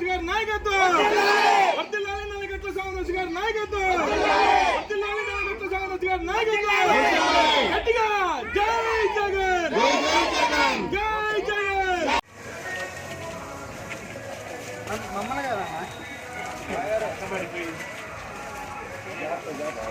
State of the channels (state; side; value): identical; both; correlation 1.00